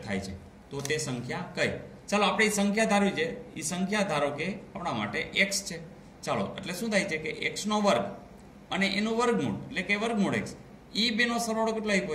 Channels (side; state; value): both; identical; correlation 1.00